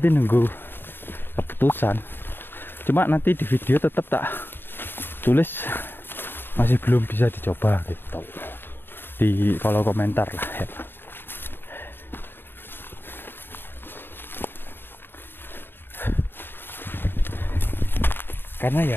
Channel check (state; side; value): late; right; 0.10 ms